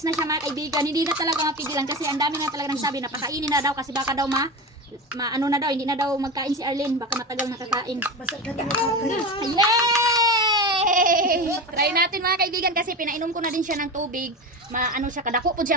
na siya mga kaibigan. Hindi na talaga mapigilan kasi ang dami nga talaga nagsabi na pakainin na daw kasi baka daw ano na daw, hindi na daw magkain si Arlene, baka matagal nakakain. Yay! Try natin mga kaibigan kasi pinainom ko na din siya ng tubig. Maano siya, kadako po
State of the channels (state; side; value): normal; both; correlation 0.24